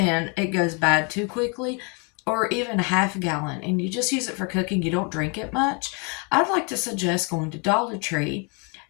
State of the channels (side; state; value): right; quieter; 33.9 dB